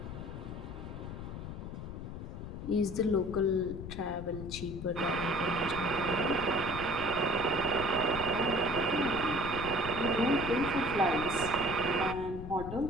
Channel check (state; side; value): noise; left; rumble, 8 dB below the sound